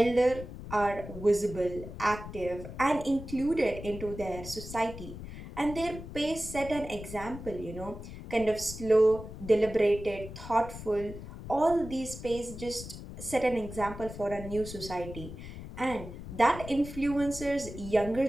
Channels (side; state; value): left; noise; rumble, 11 dB below the sound